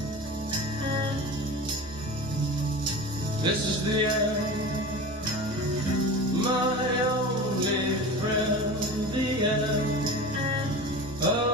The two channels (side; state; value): right; noise; hum, 22 dB below the sound